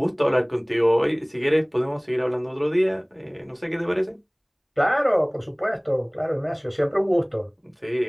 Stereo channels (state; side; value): identical; both; correlation 1.00